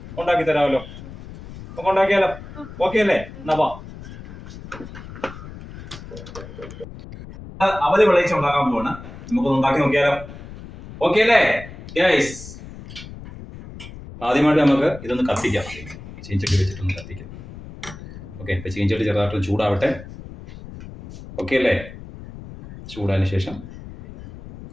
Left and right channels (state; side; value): noise; left; rumble, 14 dB below the sound